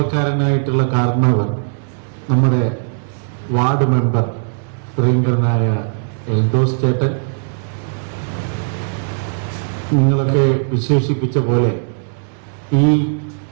കാരണവർ, നമ്മുടെ വാർഡ് മെമ്പർ പ്രിയങ്കരനായ എൽദോസ് ചേട്ടൻ, നിങ്ങളൊക്കെ വിശേഷിപ്പിച്ച പോലെ ഈ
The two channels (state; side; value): silent; left; digital silence